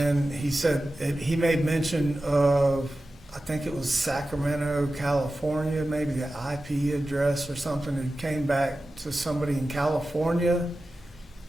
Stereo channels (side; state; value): both; normal; correlation 0.94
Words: he said, he made mention of, I think it was Sacramento, California, maybe the IP address or something. It came back to somebody in California,